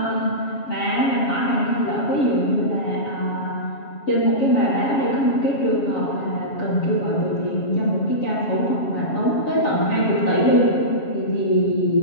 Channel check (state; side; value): late; right; 7.3 ms